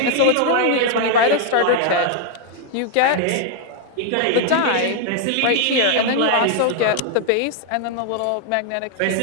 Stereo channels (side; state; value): both; different; correlation 0.00